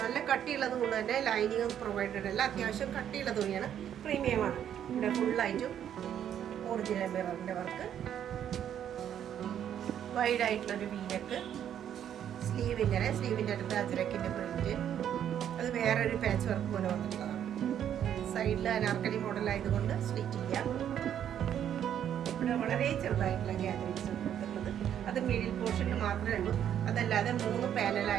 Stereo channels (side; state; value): left; quieter; 9.8 dB